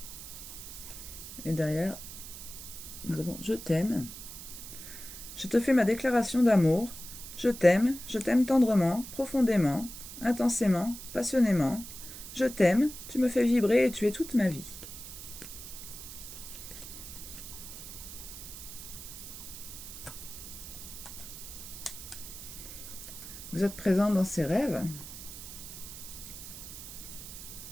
» Et derrière, nous avons « Je t'aime. Je te fais ma déclaration d'amour. Je t'aime tendrement, profondément, intensément, passionnément. Je t'aime, tu me fais vibrer et tu es toute ma vie. » Vous êtes présent dans ses rêves.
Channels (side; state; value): right; noise; hiss, 12 dB below the sound